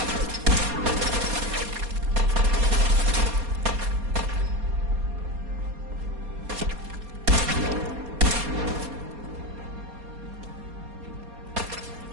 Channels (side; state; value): left; late; 4.2 ms